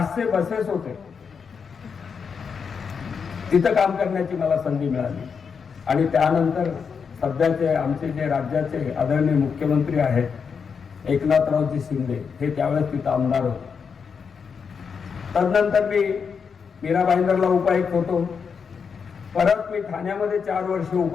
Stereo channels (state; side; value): quieter; right; 6.1 dB